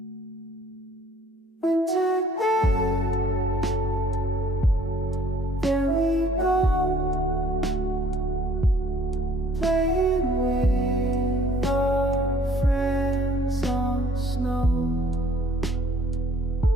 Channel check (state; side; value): normal; both; correlation 0.57